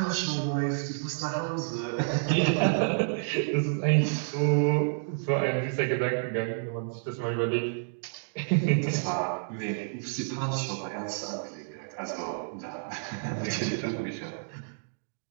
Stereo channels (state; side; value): silent; left; digital silence